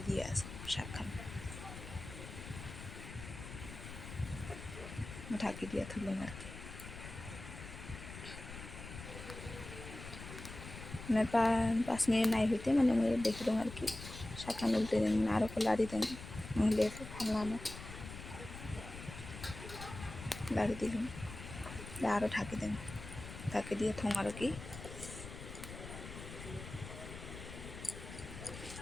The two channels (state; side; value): noise; left; rumble, 11 dB below the sound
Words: দিয়ে আসে শাকখান, ঢাকি দিয়ে তুললাম আর কি। মানে 5 মিনিট নাই হইতে মানে আমি দেখি দেন আর কি, শাকখান উল্টে দেন, আরও লাড়ি দেন, নাহলে ভালো না, লাড়ি দিলাম, আরও ঢাকি দেন, ঢাকি দিয়ে থং আর কি।